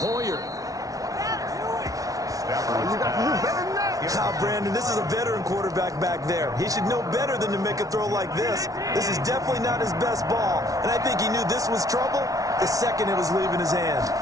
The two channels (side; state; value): left; late; 0.17 ms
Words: Brandon, this is a veteran quarterback back there. He should know better than to make a throw like this. This is definitely not his best ball, and I think he knew this was trouble the second it was leaving his hand.